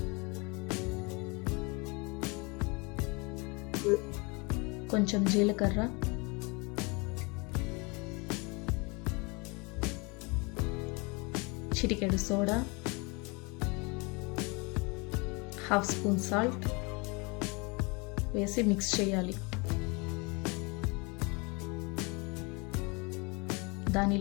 కొంచెం జీలకర్ర, చిటికెడు సోడా, 1/2 స్పూన్ సాల్ట్ వేసి మిక్స్ చేయాలి.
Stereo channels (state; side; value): quieter; right; 29.0 dB